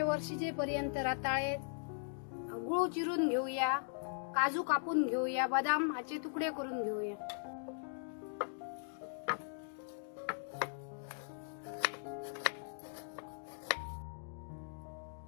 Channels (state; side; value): silent; right; digital silence